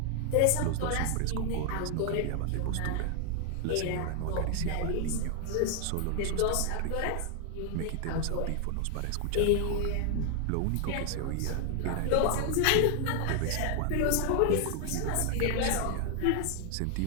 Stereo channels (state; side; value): different; both; correlation 0.00